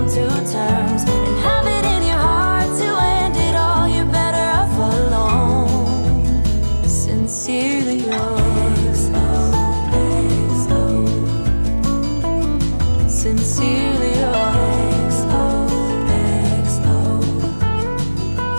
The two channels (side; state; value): both; inverted; correlation -1.00